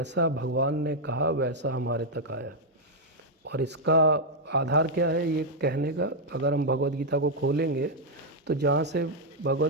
भगवान ने कहा वैसा हमारे तक आया। और इसका आधार क्या है ये कहने का, अगर हम भगवद गीता को खोलेंगे तो जहाँ से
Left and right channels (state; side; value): normal; both; correlation -0.02